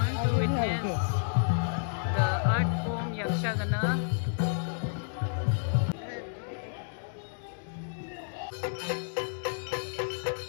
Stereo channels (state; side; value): silent; right; digital silence